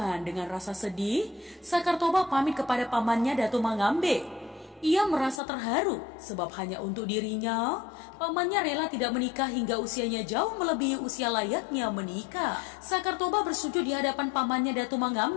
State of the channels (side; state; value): right; drops out; at 5.4 s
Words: dengan rasa sedih, Sakar Toba pamit kepada pamannya Datu Mangambe. Ia merasa terharu sebab hanya untuk dirinya, pamannya rela tidak menikah hingga usianya jauh melebihi usia layaknya menikah. Sakar Toba bersujud di hadapan pamannya Datu